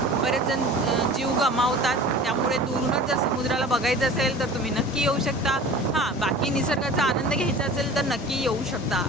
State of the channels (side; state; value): both; normal; correlation 0.40